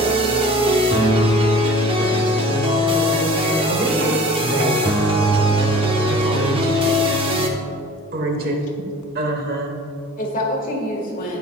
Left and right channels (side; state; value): both; normal; correlation 0.45